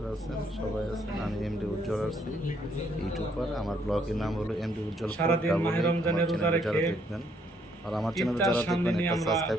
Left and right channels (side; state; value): both; normal; correlation 0.69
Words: আছেন, সবাই আছেন। আমি এমডি উজ্জ্বল আছি, ইউটিউবার। আমার ব্লগের নাম হলো এমডি উজ্জ্বল। যারা দেখবেন আর আমার চ্যানেলে যারা দেখবেন একটা সাবস্ক্রাইব